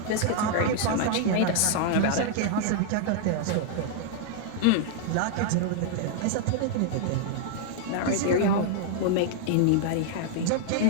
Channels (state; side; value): different; both; correlation 0.00